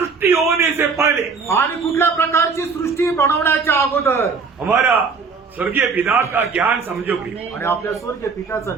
होने से पहले आणि कुठल्या प्रकारची सृष्टी बनवण्याच्या अगोदर हमारा स्वर्गीय पिता का ज्ञान समझो प्रिय। आणि आपल्या स्वर्गीय पित्याचं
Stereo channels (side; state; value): left; quieter; 5.0 dB